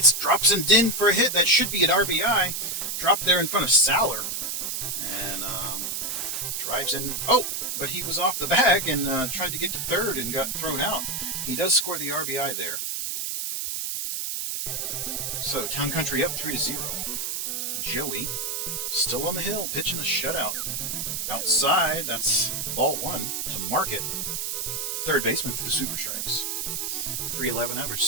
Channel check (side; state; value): right; noise; hiss, 2 dB below the sound